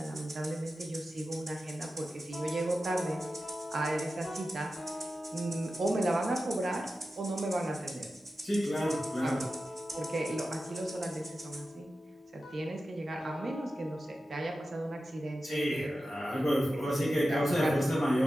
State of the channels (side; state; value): both; normal; correlation 0.93